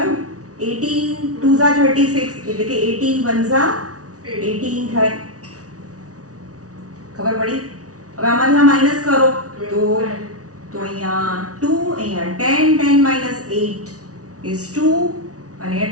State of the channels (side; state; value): left; late; 0.67 ms